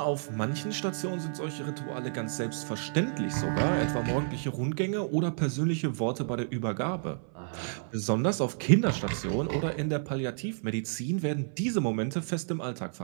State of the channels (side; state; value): left; silent; 58 dB below the other